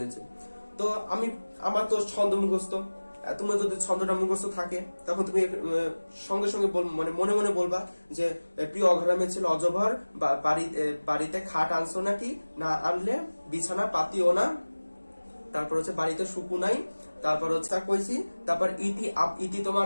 তো আমার তো ছন্দ মুখস্থ, তোমার যদি ছন্দটা মুখস্থ থাকে তখন তুমি সঙ্গে সঙ্গে মানে মনে মনে বলবা যে প্রিয় অঘরামের ছিল অজভর, বাড়িতে খাট আনছো নাকি, না আনলে বিছানা পাতিও না, তারপর হচ্ছে বাড়িতে সুকু নাই, তারপর হচ্ছে তা কইছি, তারপর ইতি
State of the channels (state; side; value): inverted; both; correlation -1.00